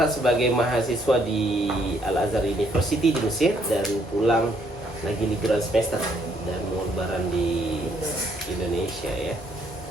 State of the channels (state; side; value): normal; both; correlation 0.69